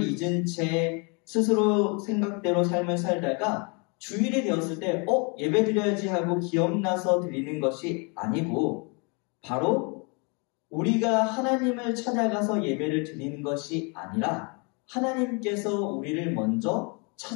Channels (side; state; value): right; quieter; 33.4 dB